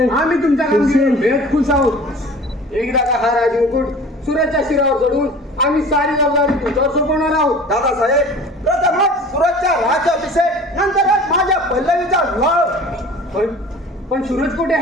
तुमच्या कामगिरीवर भेट खुश आहोत. एकदा का हा राजमुकुट सुरतच्या शिरावर चढून आम्ही सारी जबाबदारी तुमच्यावर सोपवणार आहोत. दादासाहेब प्रथमच सुरतच्या राज्याभिषेक, नंतरच माझ्या पल्लवीचा विवाह. पण सूरज कुठे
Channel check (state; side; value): normal; both; correlation 0.43